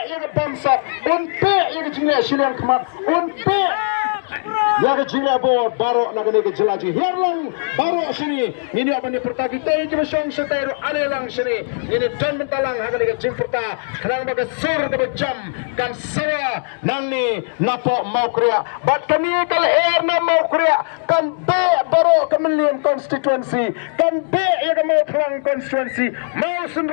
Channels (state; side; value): silent; right; digital silence